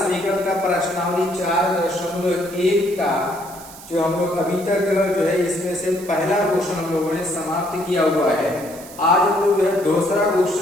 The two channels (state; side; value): noise; right; hiss, 17 dB below the sound